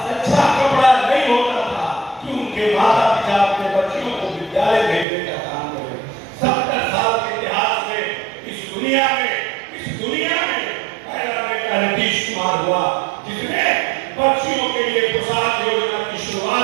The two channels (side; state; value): left; drops out; at 5.1 s